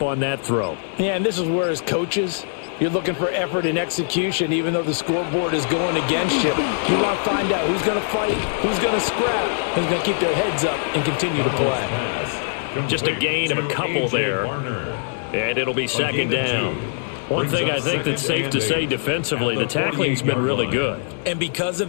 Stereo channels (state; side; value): silent; right; 64 dB below the other